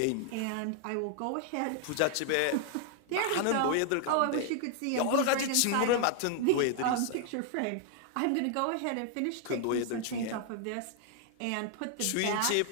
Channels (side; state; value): both; different; correlation 0.00